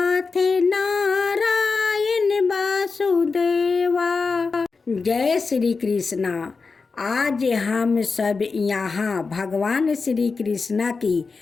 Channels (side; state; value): right; quieter; 4.5 dB